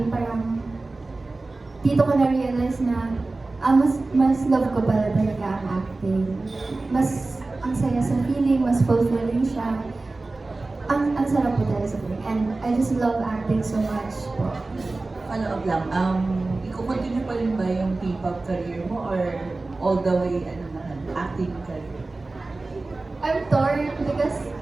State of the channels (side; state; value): left; quieter; 3.3 dB